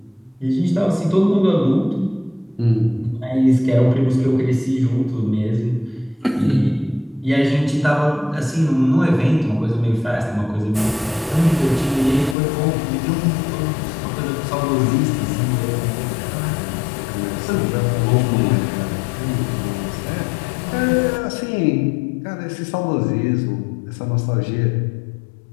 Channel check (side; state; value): right; drops out; at 12.4 s